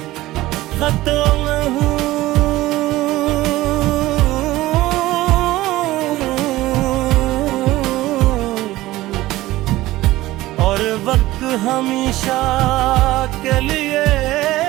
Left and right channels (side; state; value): left; quieter; 17.2 dB